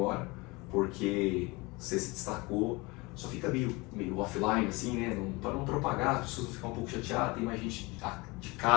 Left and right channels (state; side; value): quieter; right; 24.7 dB